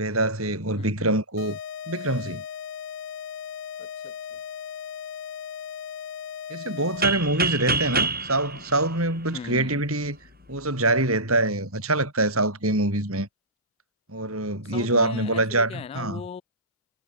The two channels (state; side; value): normal; both; correlation -0.17